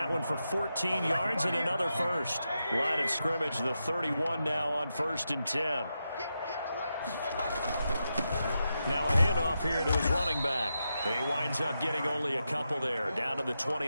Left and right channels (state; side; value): inverted; both; correlation -0.87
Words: one for 14 yards and another 1st. Line of scrimmage, the 31 now on 1st and 10. Now a handoff here to his running back. He winds up getting only a couple there, down to the